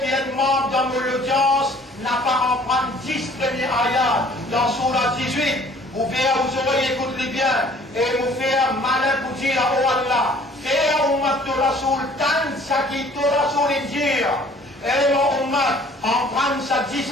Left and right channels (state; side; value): normal; both; correlation 0.54